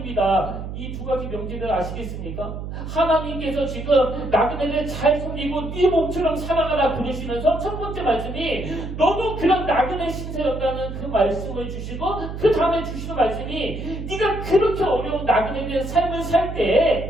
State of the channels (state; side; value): noise; right; hum, 7 dB below the sound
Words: 이 두 가지 명제를 아시겠습니까? 하나님께서 지금 나그네를 잘 섬기고 네 몸처럼 사랑하라 그러시면서 첫 번째 말씀이 너도 그런 나그네 신세였다는 그 말씀을 주시고 그 다음에 주시는 말씀이 네가 그렇게 어려운 나그네된 삶을 살